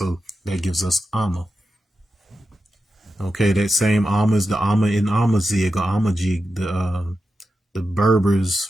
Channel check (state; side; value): normal; both; correlation 0.90